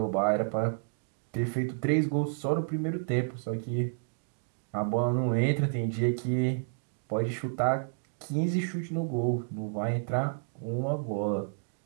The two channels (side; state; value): left; silent; digital silence